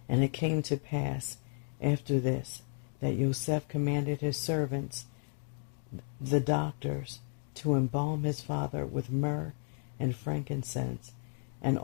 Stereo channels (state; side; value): silent; right; 55 dB below the other